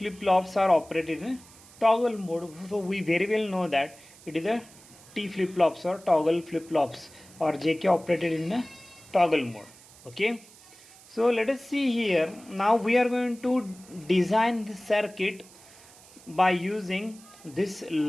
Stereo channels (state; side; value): noise; right; hiss, 23 dB below the sound